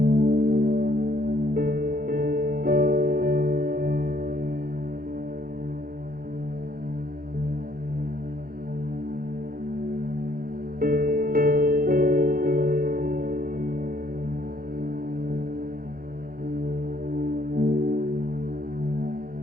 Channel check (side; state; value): left; late; 0.42 ms